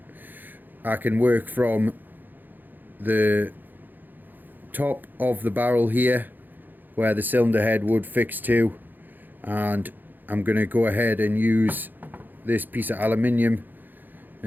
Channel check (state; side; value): late; left; 0.088 ms